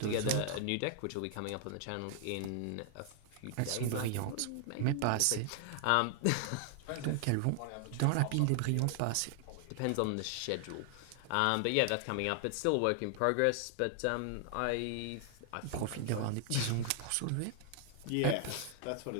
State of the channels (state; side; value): different; both; correlation 0.00